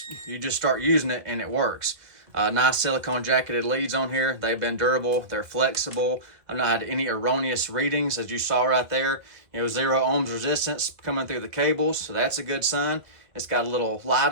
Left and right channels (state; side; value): late; left; 2.0 ms